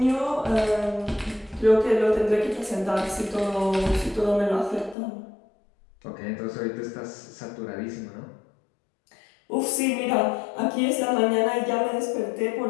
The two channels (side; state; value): right; drops out; at 5.0 s